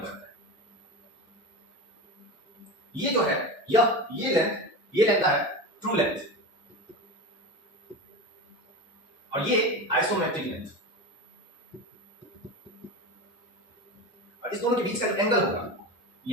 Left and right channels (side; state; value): both; normal; correlation 0.25